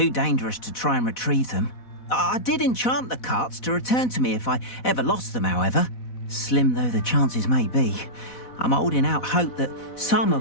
dangerous to try and retrieve them. I did enchant the carts to return to me if I ever lost them, however. Slim though the chances may be, I'm holding out hope that some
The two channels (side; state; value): right; late; 4.1 ms